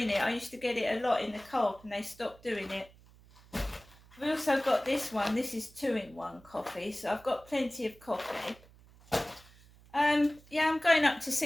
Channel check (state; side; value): noise; right; hum, 25 dB below the sound